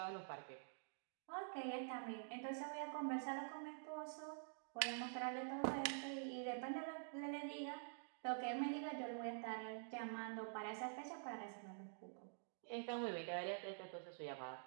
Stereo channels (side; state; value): left; silent; digital silence